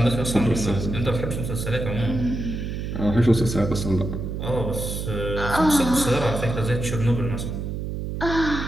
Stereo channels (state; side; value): noise; right; hum, 4 dB below the sound